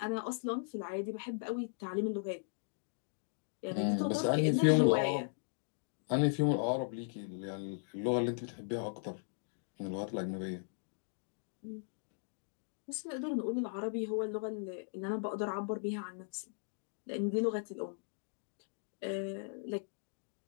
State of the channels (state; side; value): silent; right; digital silence